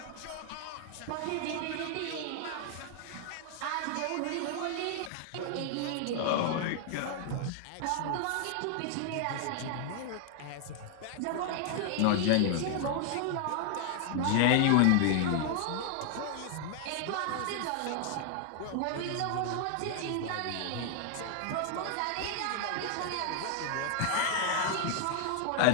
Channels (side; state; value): both; different; correlation 0.00